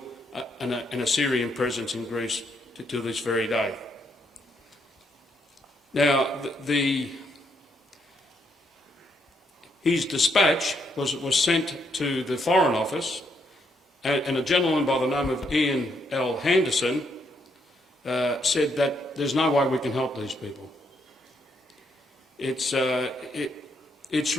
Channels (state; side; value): normal; both; correlation 0.75